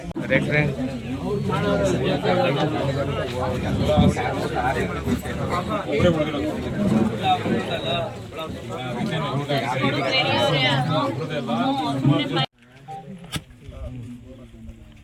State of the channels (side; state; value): both; identical; correlation 1.00